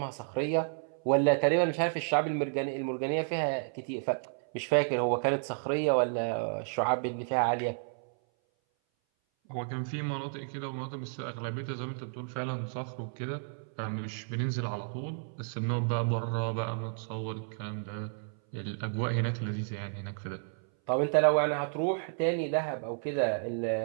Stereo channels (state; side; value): silent; left; 57 dB below the other